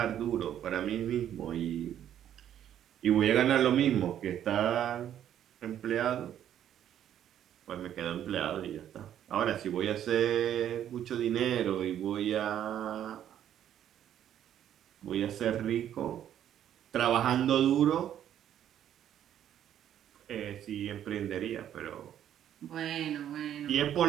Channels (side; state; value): left; quieter; 10.5 dB